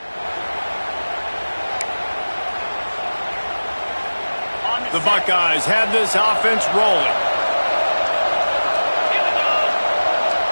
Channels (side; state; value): both; inverted; correlation -1.00